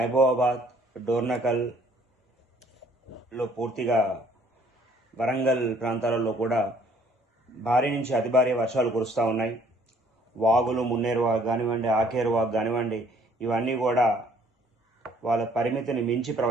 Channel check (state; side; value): normal; both; correlation 0.60